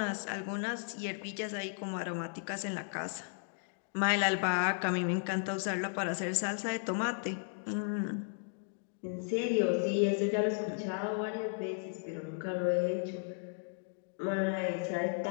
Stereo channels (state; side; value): silent; right; digital silence